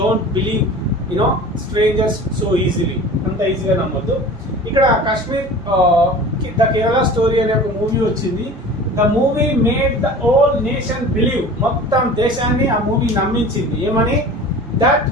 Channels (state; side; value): normal; both; correlation 0.39